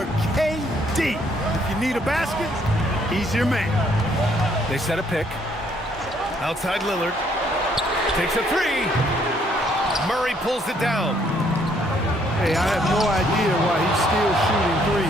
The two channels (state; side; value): normal; both; correlation 0.67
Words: KD. If you need a basket, he's your man. They set a pick. Outside Lillard. Takes a 3. Murray pulls it down. Hey, I have no idea why he's still shooting